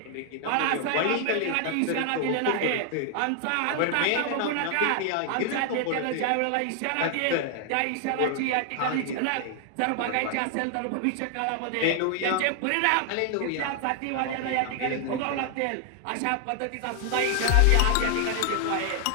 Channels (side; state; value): both; different; correlation 0.00